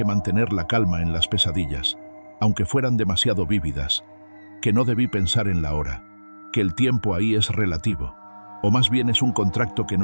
mantener la calma en las pesadillas, aunque fueran demasiado vívidas, que no debí pensar en la hora, que el tiempo ahí es relativo, o más bien es un contrato que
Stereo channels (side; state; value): both; inverted; correlation -1.00